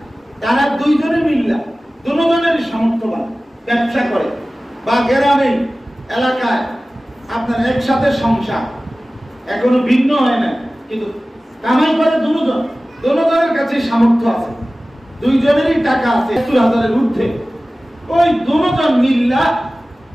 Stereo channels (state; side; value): normal; both; correlation 0.97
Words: তারা দুইজনে মিল্লা, দুজনের সামর্থ্যবান, ব্যবসা করে, বা গ্রামে এলাকায় আপনার একসাথে সংসার, এখনো ভিন্ন হয় না, কিন্তু কামাই করে দুজনের কাছে সামর্থ্য আছে, দুইজনেরই টাকা আছে 70,000-এর ঊর্ধ্বে। ওই দুজন মিল্লা